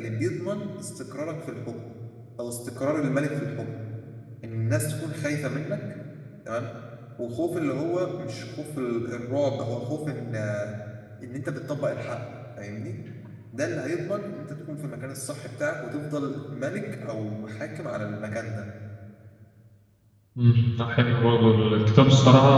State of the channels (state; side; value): identical; both; correlation 1.00